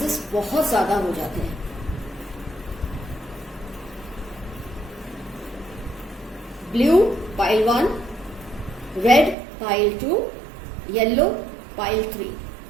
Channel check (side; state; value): left; drops out; at 9.3 s